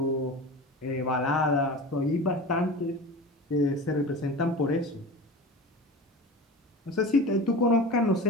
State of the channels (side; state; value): both; normal; correlation 0.32